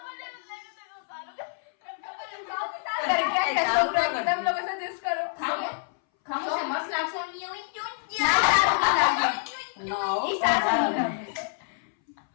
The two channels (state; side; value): silent; right; 60 dB below the other